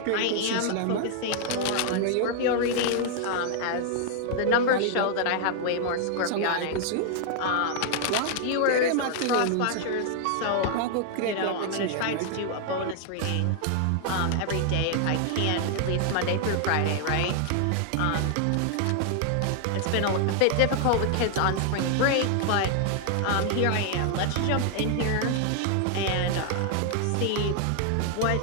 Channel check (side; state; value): both; different; correlation 0.00